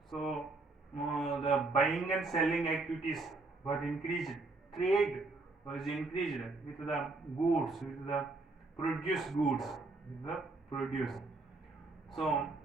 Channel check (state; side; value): quieter; left; 3.4 dB